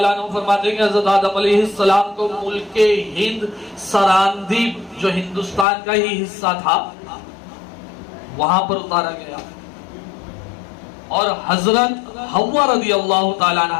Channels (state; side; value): drops out; right; at 5.7 s